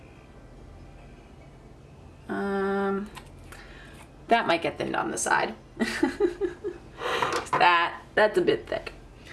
That might get thinned on the side. That's a bit thick.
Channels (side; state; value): both; identical; correlation 1.00